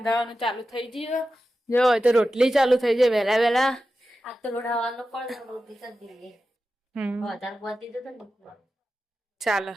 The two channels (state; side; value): normal; both; correlation 0.92